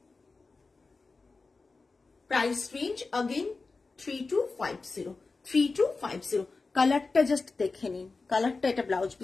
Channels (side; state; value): right; quieter; 4.0 dB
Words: Price range again 3250। কালারটা জাস্ট দেখে নিন, কালারটা এটা ব্লাউজ